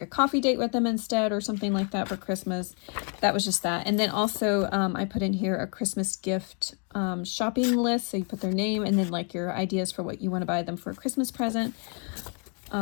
a coffee date with them instead or something like that for Christmas. That was just that. And then also I put in here a Christmas gift shopping list. So you put their name and then like your ideas for what you want to buy them for a Christmas present.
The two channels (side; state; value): right; quieter; 39.3 dB